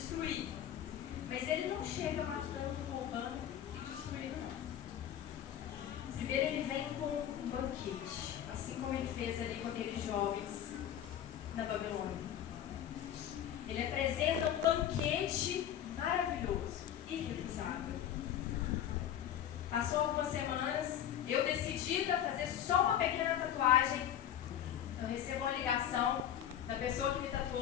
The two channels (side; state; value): right; quieter; 10.4 dB